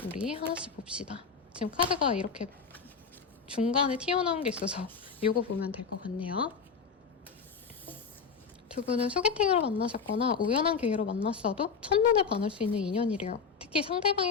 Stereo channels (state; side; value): quieter; right; 5.6 dB